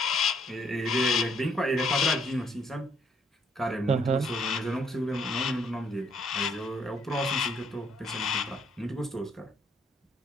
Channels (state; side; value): normal; both; correlation 0.67